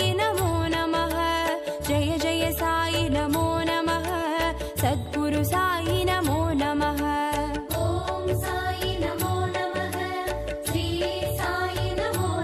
नमो नमः जय जय साई नमो नमः सद्गुरु साई नमो नमः ॐ साई नमो नमः श्री साई नमो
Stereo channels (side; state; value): both; identical; correlation 1.00